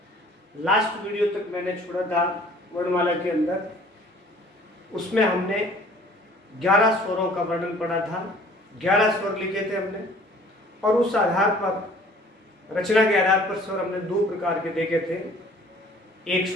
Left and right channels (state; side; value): normal; both; correlation 0.52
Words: लास्ट वीडियो तक मैंने छोड़ा था वर्णमाला के अंदर, उसमें हमने 11 स्वरों का वर्णन पढ़ा था। 11 स्वर लिखे थे हमने और उस आधार पर, रचना के आधार पर स्वर हमने दो प्रकार के देखे थे। एक